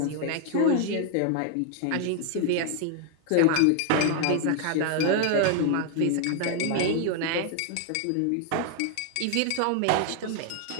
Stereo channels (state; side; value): different; both; correlation 0.00